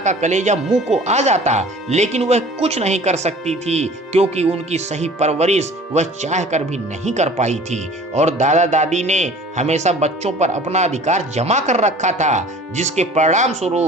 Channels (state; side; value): normal; both; correlation 0.46